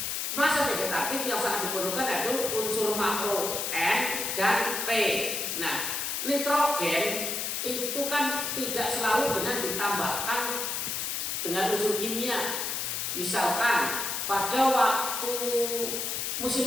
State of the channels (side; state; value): left; noise; hiss, 2 dB below the sound